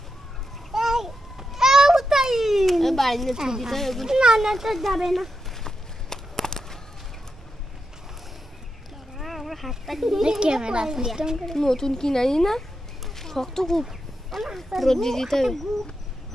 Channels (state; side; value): normal; both; correlation 0.87